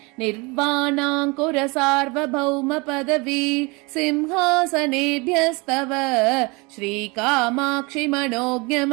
निर्वाणाङ्कुर सार्वभौम पदवी सिंहासनेभ्यस्तव श्रीकामाक्षि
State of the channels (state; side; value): quieter; left; 27.0 dB